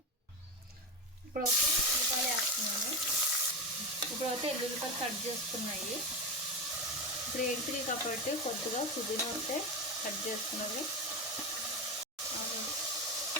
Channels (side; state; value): both; normal; correlation 0.16